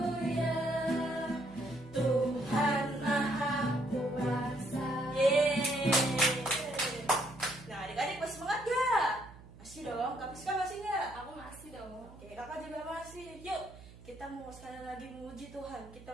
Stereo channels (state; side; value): noise; right; hum, 19 dB below the sound